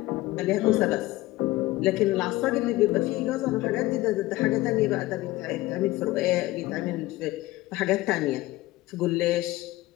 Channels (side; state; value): right; quieter; 18.1 dB